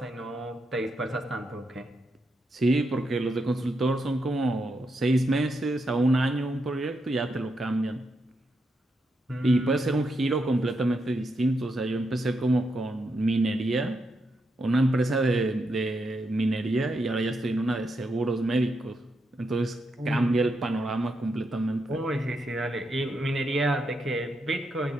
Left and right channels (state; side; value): normal; both; correlation 0.82